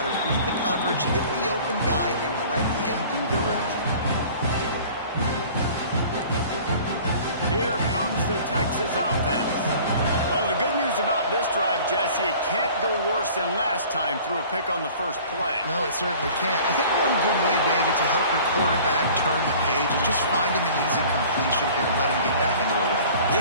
to read the coverage, hit the open guy, and let him do the rest. Here comes the Texas offense. Well, the good news about this drive, Jesse, it can't go worse than last time through a pick on the first play. No, it certainly can't. I think one good way, David, to help your quarterback turn the page is just find him an easy completion here and let him get back into a rhythm.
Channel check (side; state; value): both; inverted; correlation -0.46